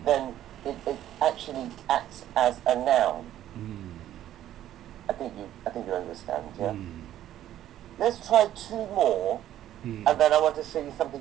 then it actually acts as a noun. I think you understand, yeah? Let's try two more, and then I want to show you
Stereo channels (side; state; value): left; quieter; 12.3 dB